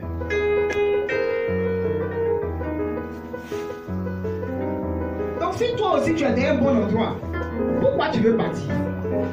Donc, si toi aussi, tu es dans un bon endroit, pourquoi tu veux partir?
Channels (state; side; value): identical; both; correlation 1.00